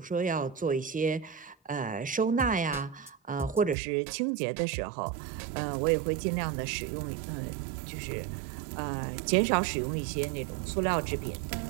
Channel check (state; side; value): drops out; left; at 3.8 s